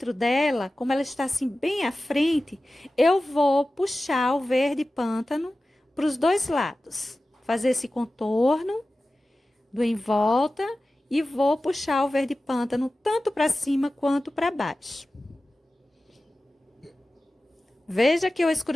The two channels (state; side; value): normal; both; correlation 0.95